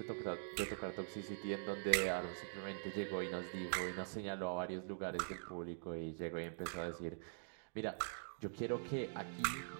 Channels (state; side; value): silent; left; digital silence